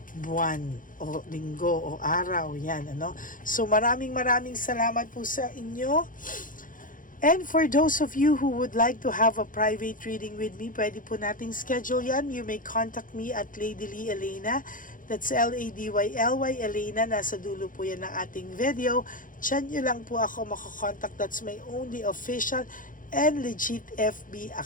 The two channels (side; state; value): right; late; 0.39 ms